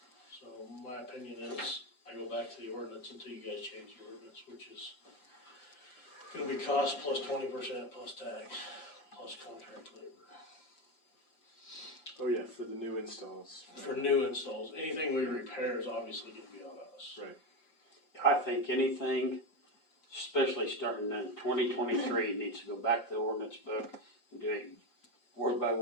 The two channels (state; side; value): late; right; 6.0 ms